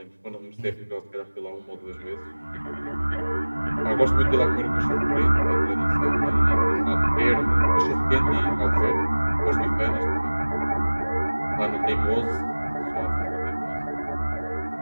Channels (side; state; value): both; inverted; correlation -1.00